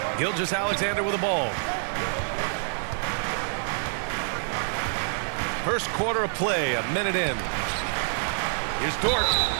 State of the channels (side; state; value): left; silent; 60 dB below the other